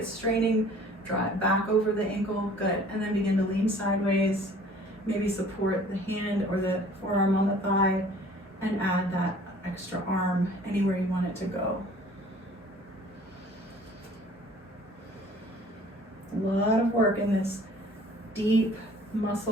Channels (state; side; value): normal; both; correlation 0.51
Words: straining, draw it back over the ankle. Good. And then begin to lean sideways. Maybe support the hand or the forearm on the thigh and add that extra arm anywhere you want it to go. A lot of work in this deep